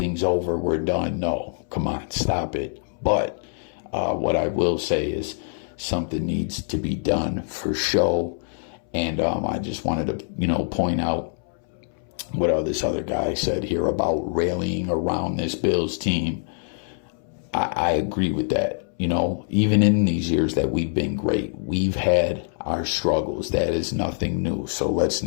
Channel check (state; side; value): silent; right; 62 dB below the other